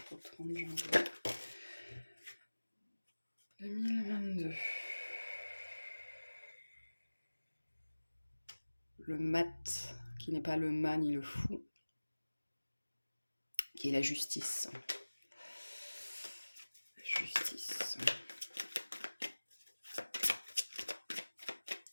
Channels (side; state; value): both; inverted; correlation -1.00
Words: au 30 janvier 2022. Le mat, qui n'est pas le mat ni le fou, qui est la justice.